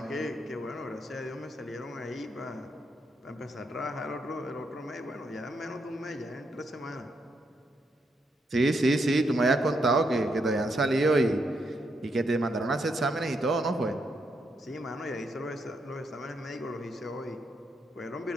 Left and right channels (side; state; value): both; normal; correlation 0.79